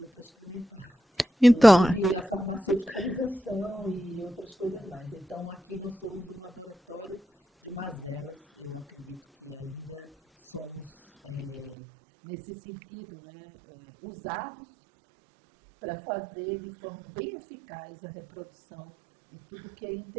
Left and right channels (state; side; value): drops out; left; at 11.8 s